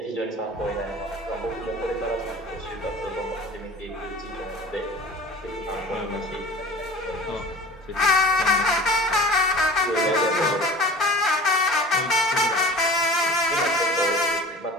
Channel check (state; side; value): normal; both; correlation 0.41